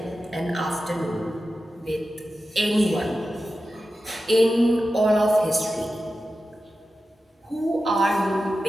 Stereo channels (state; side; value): normal; both; correlation 0.93